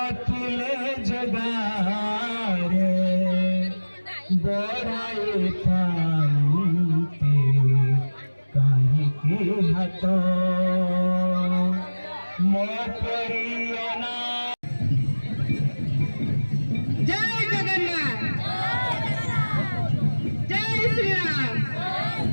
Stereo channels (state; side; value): inverted; both; correlation -1.00